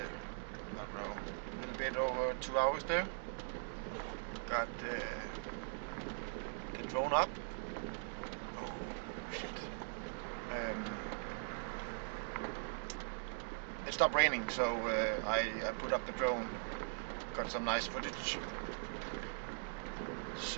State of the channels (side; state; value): left; silent; digital silence